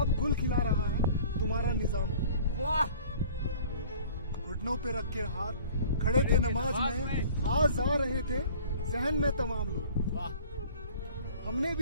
गुल खिला रहा है तुम्हारा निजाम हो. वाह! घुटनों पे रख के हाथ खड़े थे नमाज में, आज आ रहे थे जहन में तमाम लोग. वाह! हमने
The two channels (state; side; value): inverted; both; correlation -0.48